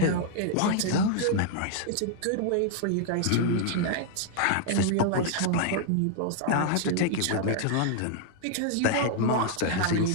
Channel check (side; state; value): both; different; correlation 0.00